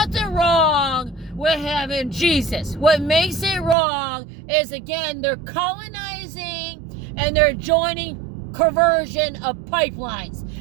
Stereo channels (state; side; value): drops out; left; at 3.8 s